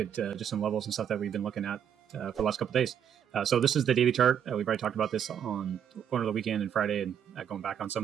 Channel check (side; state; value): left; quieter; 8.8 dB